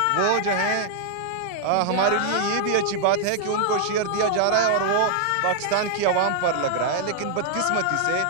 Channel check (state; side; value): different; both; correlation 0.00